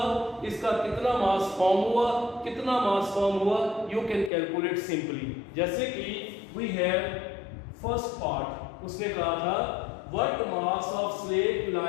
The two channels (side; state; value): right; drops out; at 4.3 s